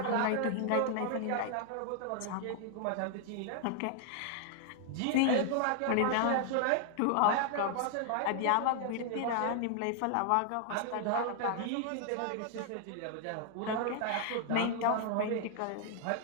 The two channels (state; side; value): different; both; correlation 0.00